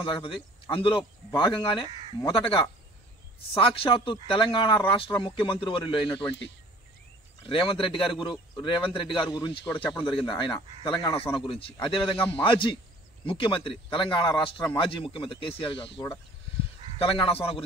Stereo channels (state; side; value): normal; both; correlation 0.51